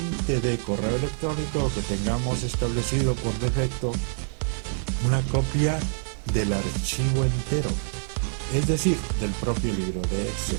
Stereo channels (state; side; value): silent; left; 61 dB below the other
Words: de correo electrónico que tengamos establecido por defecto una copia del archivo entero, es decir, del propio libro de Excel.